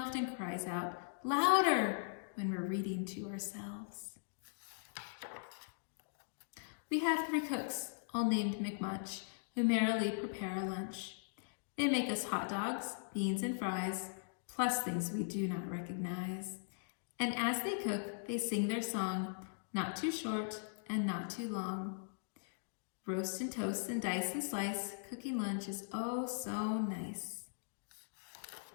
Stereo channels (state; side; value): silent; right; digital silence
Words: cries out, "Louder!" when we're reading to ourselves. We have 3 cooks, all named McMunch, who merrily prepare our lunch. They make us hot dogs, beans, and fries, plus things we do not recognize. And as they cook, they sing their song, not too short and not too long. Roast and toast and dice and slice, cooking lunch is oh so nice.